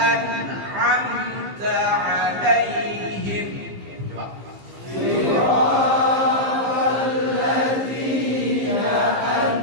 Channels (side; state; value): left; late; 15 ms